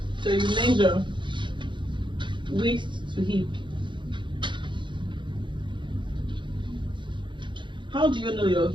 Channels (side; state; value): left; late; 0.23 ms